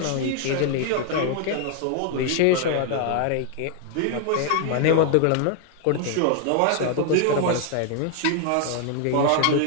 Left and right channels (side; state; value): both; different; correlation 0.00